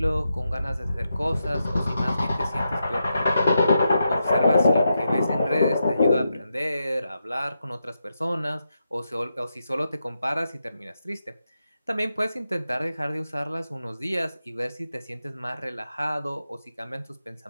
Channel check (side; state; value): both; inverted; correlation -0.86